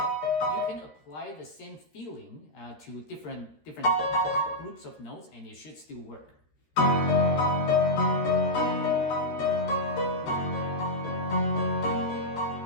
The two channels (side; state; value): right; late; 13 ms